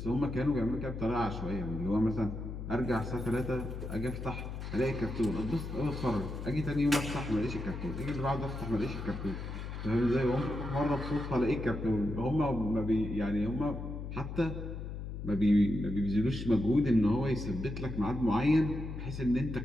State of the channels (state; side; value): noise; left; hum, 7 dB below the sound